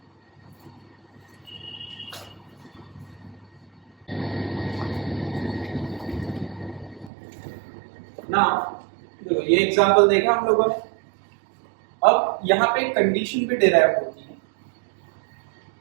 ना देखो ये एग्जांपल देखा हम लोगों ने। अब यहाँ पे कंडीशन भी डिराइव होती है।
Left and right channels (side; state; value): left; drops out; at 7.1 s